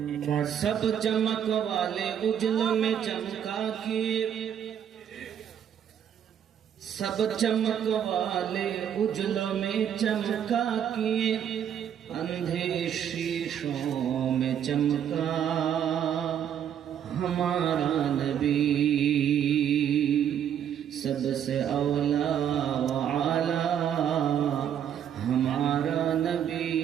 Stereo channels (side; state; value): left; quieter; 9.2 dB